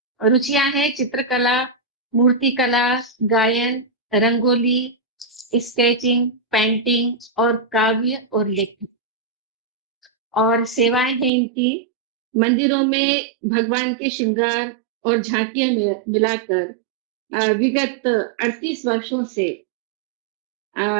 रुचियां हैं चित्रकला, मूर्तिकला, गायन, रंगोली, स्केचिंग, पेंटिंग और काव्य और लेखन। और सेवाएं हैं इनकी मंदिरों में भगवान के श्रृंगार और झांकियां मिलाकर विगत 38 वर्षों से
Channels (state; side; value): drops out; left; at 11.3 s